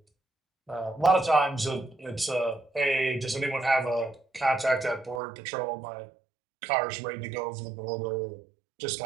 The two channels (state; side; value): drops out; left; at 5.2 s